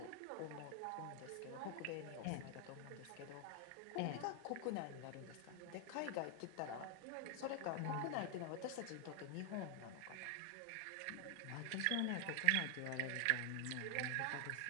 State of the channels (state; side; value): different; both; correlation 0.00